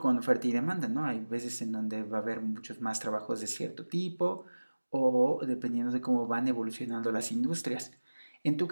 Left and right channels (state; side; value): inverted; both; correlation -1.00